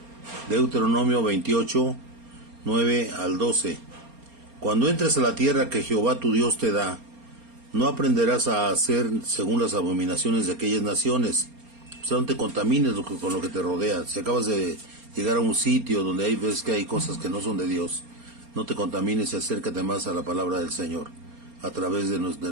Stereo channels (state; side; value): late; left; 4.3 ms